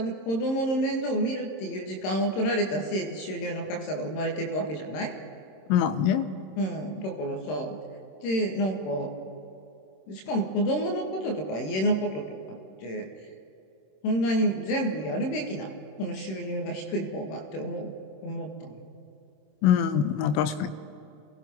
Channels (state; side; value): late; right; 26 ms